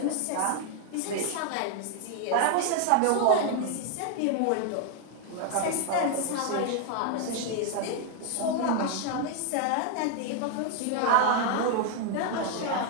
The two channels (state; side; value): different; both; correlation 0.00